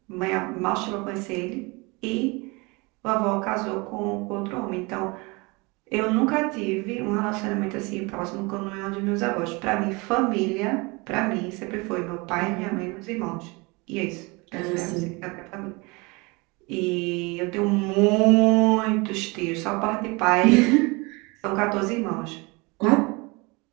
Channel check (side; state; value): left; quieter; 26.6 dB